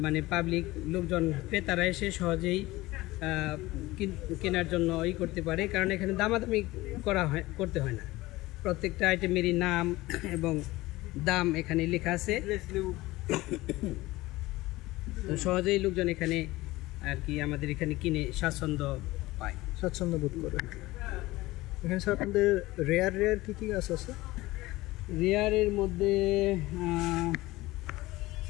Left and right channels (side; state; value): right; quieter; 19.1 dB